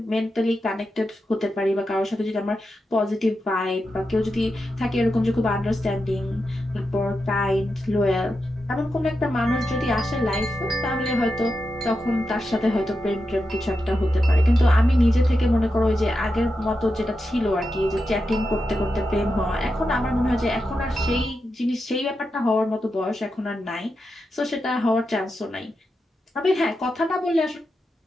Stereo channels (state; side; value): normal; both; correlation 0.88